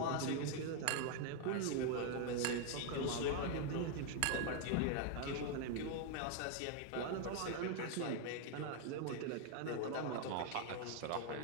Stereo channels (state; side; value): different; both; correlation 0.00